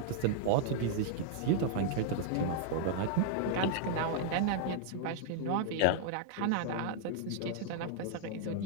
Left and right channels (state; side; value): different; both; correlation -0.01